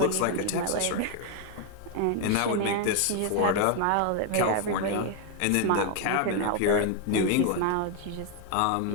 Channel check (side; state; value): both; different; correlation 0.00